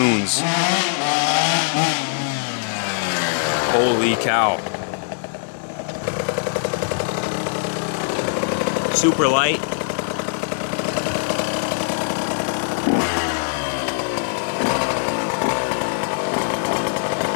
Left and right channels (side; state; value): right; silent; 60 dB below the other